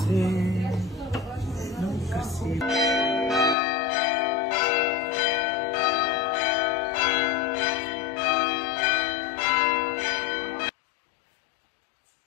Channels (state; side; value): drops out; right; at 3.6 s